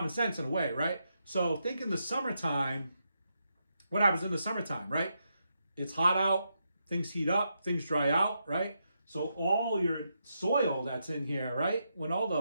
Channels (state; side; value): inverted; both; correlation -0.83